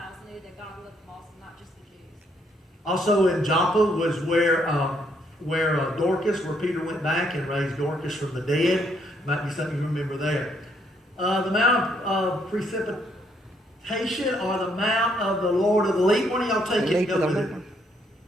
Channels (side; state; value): both; normal; correlation 0.71